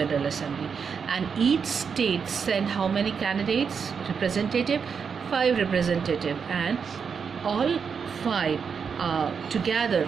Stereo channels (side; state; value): left; quieter; 6.2 dB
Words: Assembly, and each state send how many candidates? Representative, 5 representative, and all 5